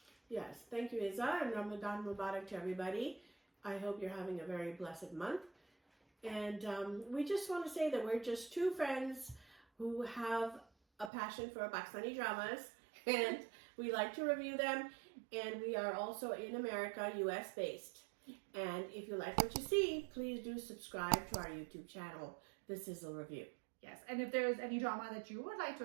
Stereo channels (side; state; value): left; drops out; at 11.1 s